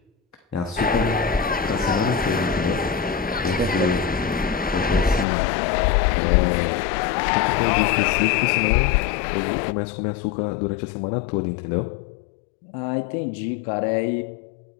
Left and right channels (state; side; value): drops out; right; at 5.2 s